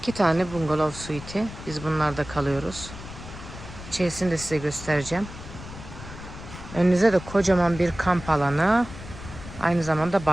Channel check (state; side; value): noise; left; rumble, 13 dB below the sound